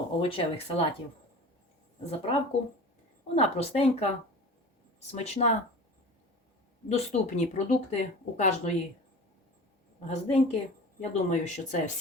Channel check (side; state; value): both; normal; correlation 0.37